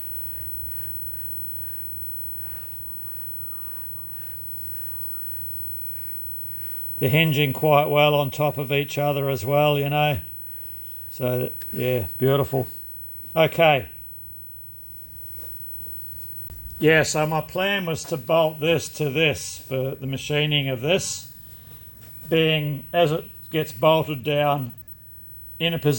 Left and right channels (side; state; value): both; identical; correlation 1.00